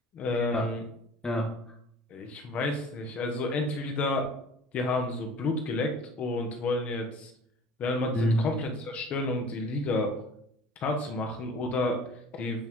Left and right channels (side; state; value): both; normal; correlation 0.46